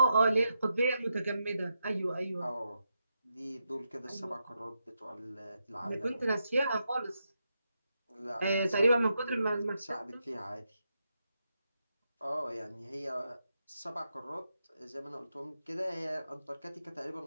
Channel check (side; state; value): both; inverted; correlation -0.85